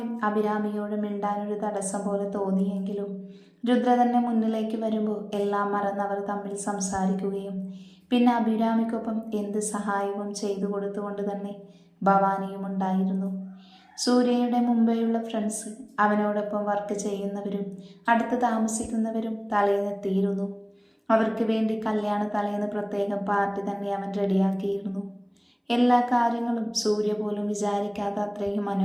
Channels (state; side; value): identical; both; correlation 1.00